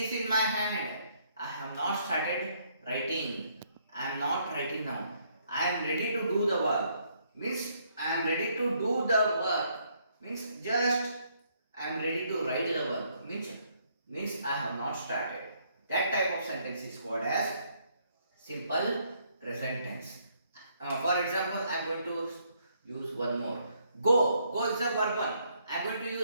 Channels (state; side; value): inverted; both; correlation -0.70